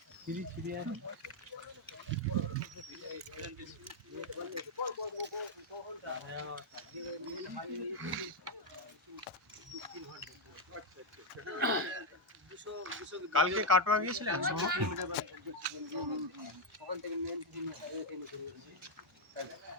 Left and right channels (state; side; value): normal; both; correlation 0.01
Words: ফিরি ফিরি আছে। কালকে কাটোয়া গিয়েছিলেন? ওখান থেকে